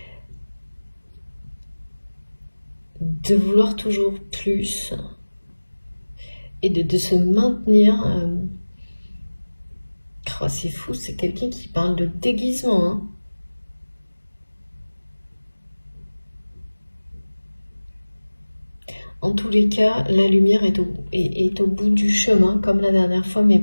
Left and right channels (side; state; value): both; inverted; correlation -1.00